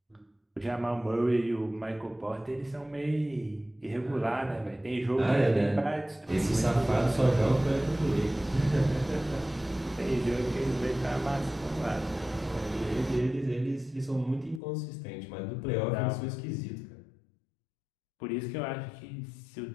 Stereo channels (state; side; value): drops out; right; at 14.6 s